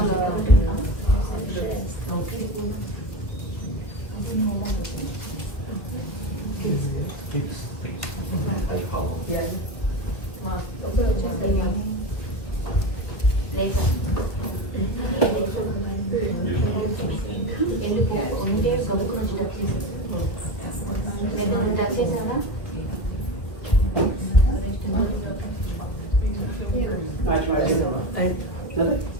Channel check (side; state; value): right; late; 2.0 ms